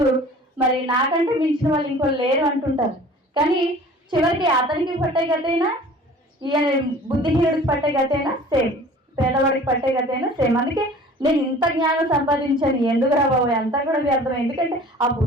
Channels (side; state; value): both; normal; correlation 0.46